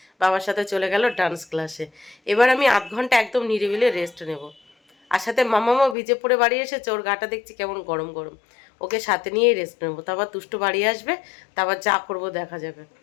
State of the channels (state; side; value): drops out; right; at 6.0 s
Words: বাবার সাথে চলে গেল ডান্স ক্লাসে। এবার আমি আধ ঘন্টা একদম নিরিবিলি রেস্ট নেব। আর সাথে মামামও ভিজে পড়ে বাড়ি এসেছে, ওর গাটা দেখছি কেমন গরম গরম, ওকে সাথে নিয়েই রেস্ট নেবো। তারপর দুষ্টু বাড়ি আসবে, তারপর যা করবো দেখা যাবে।